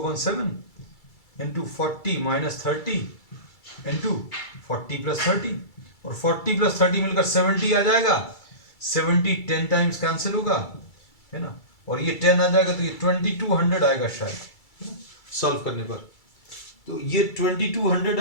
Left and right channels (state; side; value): late; right; 2.3 ms